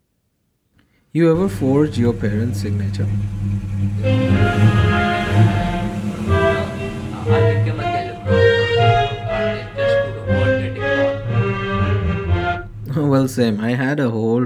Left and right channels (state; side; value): identical; both; correlation 1.00